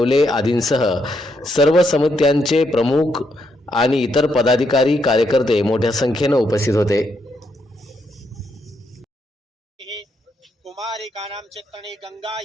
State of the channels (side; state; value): both; normal; correlation 0.78